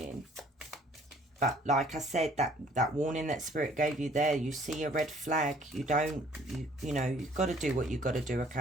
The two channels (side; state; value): both; normal; correlation 0.58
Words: But like I said, that warning that Spirit gave you there, you see a red flag, you know, you've got to do what you've got to do, okay?